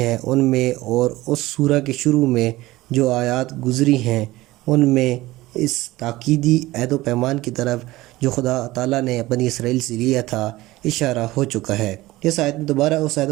ان میں اور اس سورہ کے شروع میں جو آیات گزری ہیں ان میں اس تاکیدی عہد و پیمان کی طرف جو خدا تعالیٰ نے بنی اسرائیل سے لیا تھا اشارہ ہو چکا ہے۔ اس آیت میں دوبارہ اس عہد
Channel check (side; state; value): left; quieter; 18.3 dB